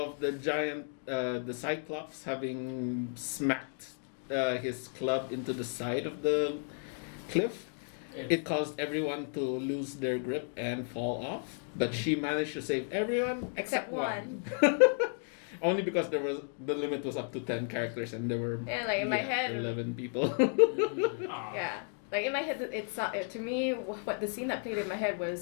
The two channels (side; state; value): right; silent; 56 dB below the other